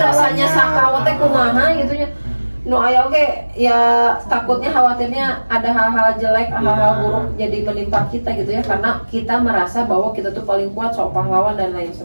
sakawa teh kumaha gitu ya. No aya oke ya, takutnya khawatirnya ada hal-hal jelek, hal-hal buruk jadi menimpa kita gitu ya, karena kita merasa bahwa kita tuh paling kuat, sok pahlawan dan lain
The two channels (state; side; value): inverted; both; correlation -1.00